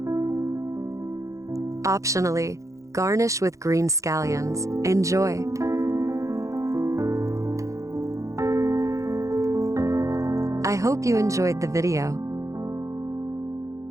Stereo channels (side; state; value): left; late; 0.15 ms